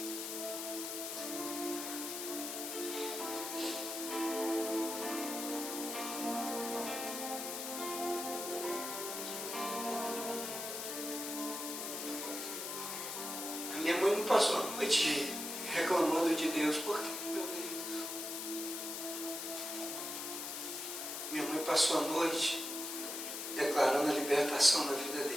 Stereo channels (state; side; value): noise; left; hiss, 5 dB below the sound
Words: Minha mãe não passou a noite reclamando de Deus, por quê, meu Deus? Minha mãe passou a noite declarando a libertação na vida